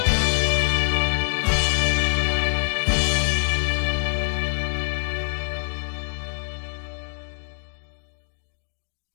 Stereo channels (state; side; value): silent; right; 62 dB below the other